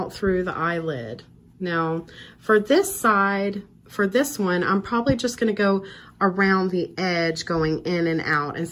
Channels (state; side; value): identical; both; correlation 1.00